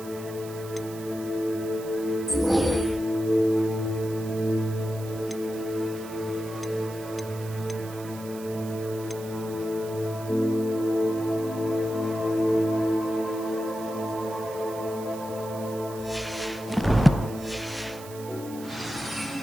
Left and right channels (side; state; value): right; noise; hiss, 17 dB below the sound